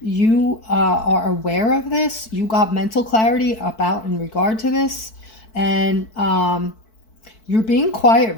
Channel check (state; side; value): late; right; 4.6 ms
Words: are aware of this. You got mental clarity about in regard to this. And you're being quiet